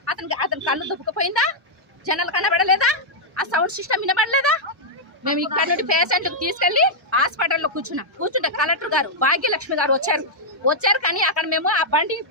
అతని కళ్ళు దుబ్బుకుపోయిందా? జనాలు కనబడలేదా? ఆ సౌండ్ సిస్టమ్ వినబడలేదా? మేము ఇక్కడ నుండి పేషెంట్కి తీసుకెళ్లి హాస్పిటల్లో కూర్చుంటే కలెక్టర్ గారు భాగ్యలక్ష్మి గారు వచ్చారు. కానీ అక్కడ మేము ఆ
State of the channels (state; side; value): normal; both; correlation -0.05